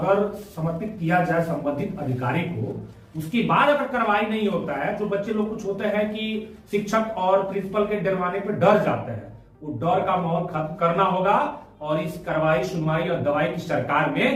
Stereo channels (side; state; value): both; identical; correlation 1.00